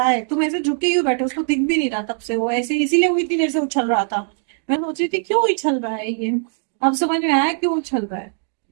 है। तुम ऐसे झुके ही बैठे, उसको दिख भी नहीं रहा तब से, वो ऐसे इसीलिए वो इतनी देर से उछल रहा था। मैं सोच रही थी क्यों उछल रहा है ये, अब समझ में आया क्यों उछल रहा है।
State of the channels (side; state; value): left; silent; 65 dB below the other